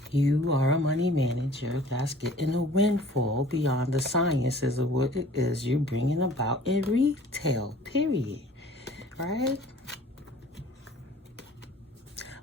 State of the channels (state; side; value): normal; both; correlation 0.49